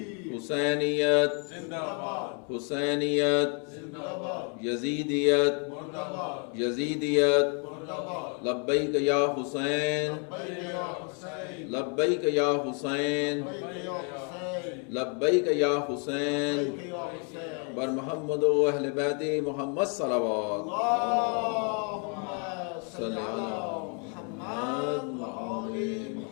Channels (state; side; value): quieter; right; 38.9 dB